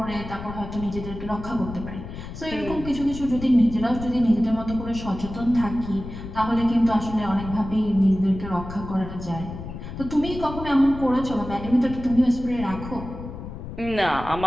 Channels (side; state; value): left; noise; rumble, 10 dB below the sound